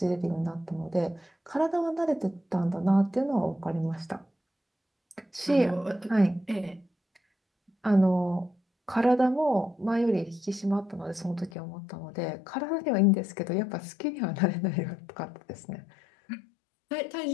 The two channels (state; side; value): drops out; right; at 11.5 s